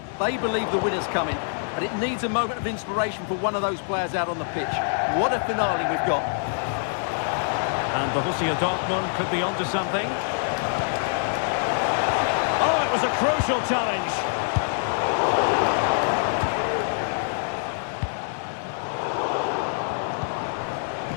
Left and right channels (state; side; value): silent; right; digital silence